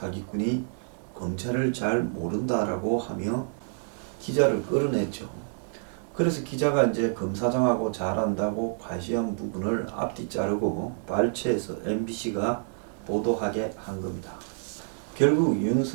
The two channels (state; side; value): silent; left; digital silence